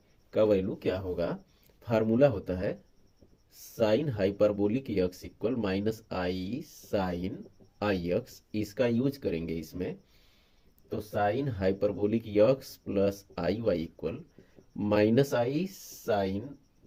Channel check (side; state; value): both; identical; correlation 1.00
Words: का वैल्यू क्या होगा? फार्मूला होता है sine hyperbolic x equal minus i sine i x, इसका यूज करेंगे इसमें, तो sine hyperbolic x plus i y equal minus i sine